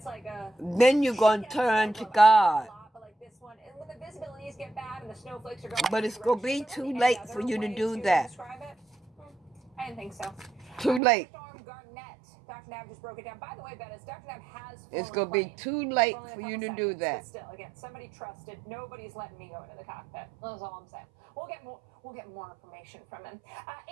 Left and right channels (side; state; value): left; drops out; at 11.0 s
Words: like a... Then you're going to turn to God. Like this one. And when the visibilities get bad and the snowflakes are going... But it's going to be too late for you to do that. I didn't think so. Too late. Dr. Nav just broke it down. By the way, Bettis, Dr. Nav has... It's going to be too late for you to do that. But still, again, somebody trusted. Nobody's letting me go into the cockpit. That's all I'm saying. We'll get more information from him.